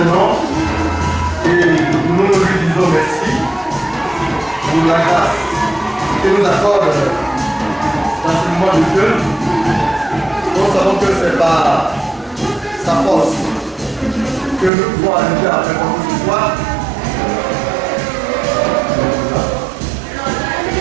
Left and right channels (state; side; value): drops out; left; at 14.7 s